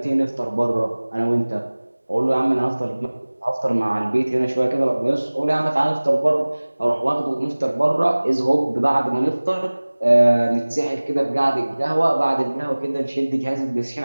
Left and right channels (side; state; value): both; inverted; correlation -1.00